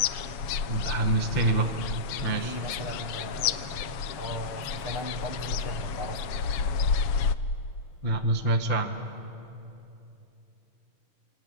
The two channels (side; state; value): right; late; 7.2 ms